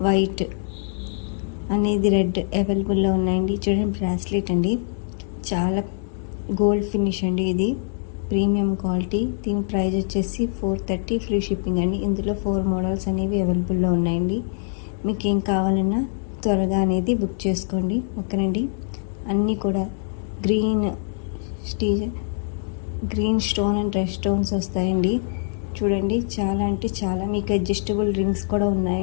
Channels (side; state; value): right; silent; digital silence